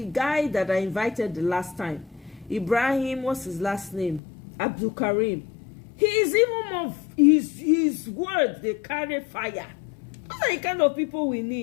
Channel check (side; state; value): right; drops out; at 4.2 s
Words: guy that I invited the last time. Ibrahim, what's his last name? Abdul Karim. He is even more, his words, they carry fire. Those are the kind of people we